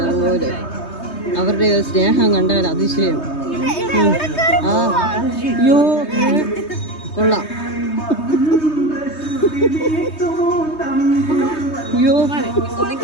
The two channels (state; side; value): late; right; 3.2 ms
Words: അതുപോലെ അവരുടെ സ്നേഹം കണ്ടാൽ അതിശയം. അയ്യോ കൊള്ളാം. അയ്യോ